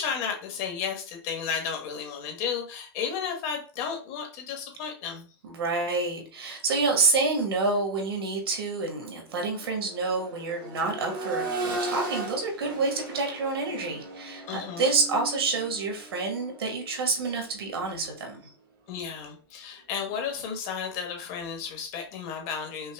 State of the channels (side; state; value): both; normal; correlation -0.04